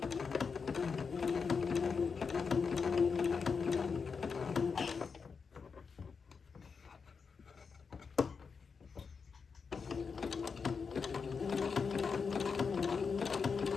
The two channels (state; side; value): quieter; right; 5.5 dB